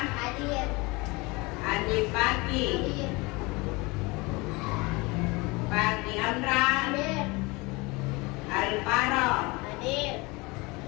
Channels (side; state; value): right; quieter; 25.0 dB